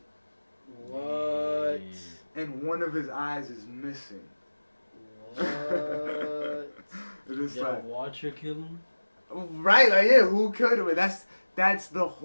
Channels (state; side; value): inverted; both; correlation -1.00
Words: What? And one of his eyes is missing. What? It's Did like, a Watcher kill him? right, like, yeah, who killed him? That's the